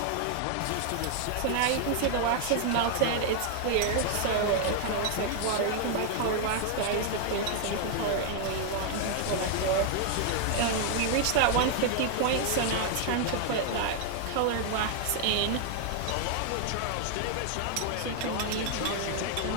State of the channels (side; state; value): both; different; correlation 0.00